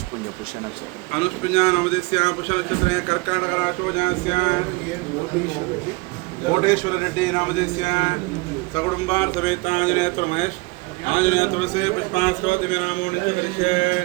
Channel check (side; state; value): left; quieter; 25.2 dB